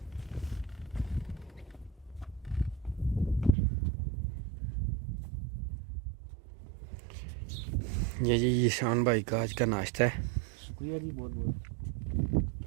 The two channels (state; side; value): drops out; left; at 3.6 s